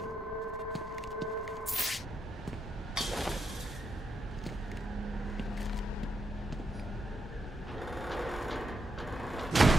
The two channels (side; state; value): both; normal; correlation 0.82